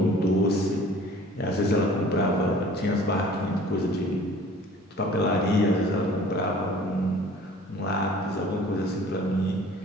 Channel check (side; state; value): both; normal; correlation 0.49